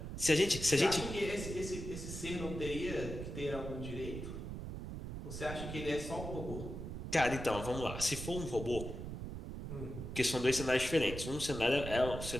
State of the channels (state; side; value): noise; right; rumble, 7 dB below the sound